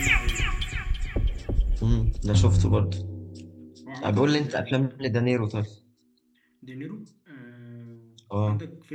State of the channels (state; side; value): identical; both; correlation 1.00